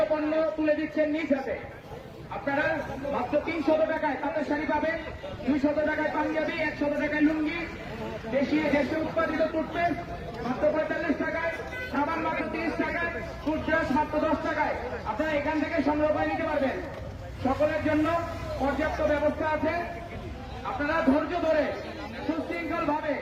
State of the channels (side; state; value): both; identical; correlation 1.00